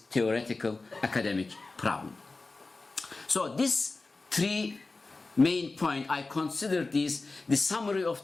theoretical academic problem. So these three main points, I consider these the summary of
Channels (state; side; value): quieter; right; 3.6 dB